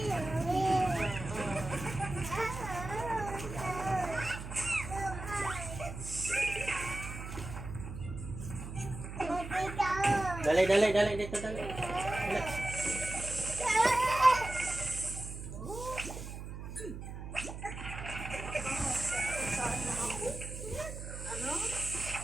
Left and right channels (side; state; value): right; noise; hum, 9 dB below the sound